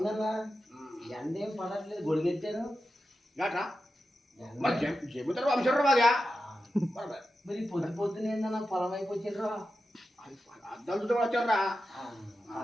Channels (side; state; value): both; normal; correlation 0.91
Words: ఎండ ఏం పడట్లేదు గొడిగెట్టాను. ఏంట్రా మరి చెబుతారు వంశరు బాగా మరి పొద్దు పొద్దున ఏందన్నా పొలం వైపు వచ్చిండ్రా. అద్దం చుట్టూ వచ్చారా